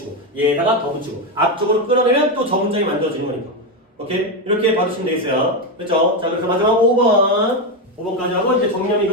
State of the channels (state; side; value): normal; both; correlation 0.10